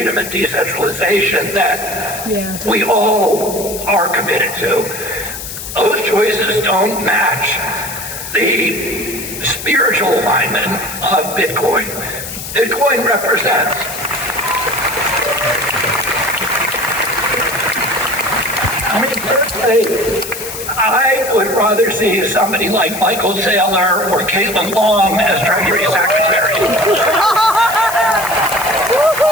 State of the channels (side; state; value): left; noise; hiss, 9 dB below the sound